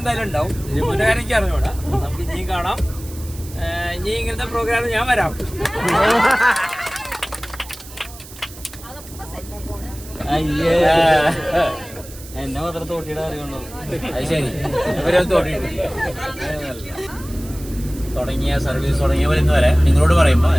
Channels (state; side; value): noise; right; hiss, 17 dB below the sound